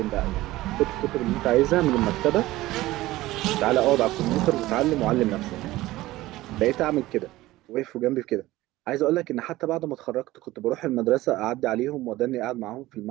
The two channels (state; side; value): quieter; left; 17.4 dB